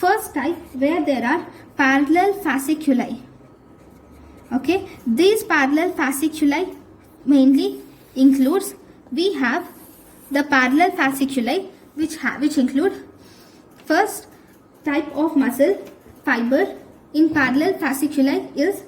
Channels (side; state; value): both; identical; correlation 1.00